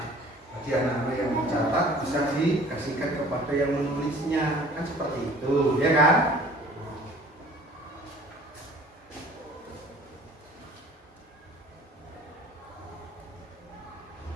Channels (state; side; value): normal; both; correlation 0.49